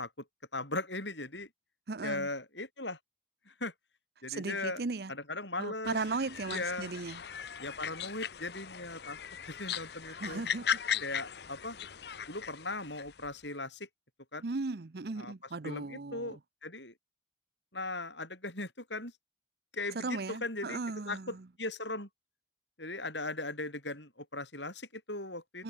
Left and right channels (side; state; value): both; normal; correlation 0.11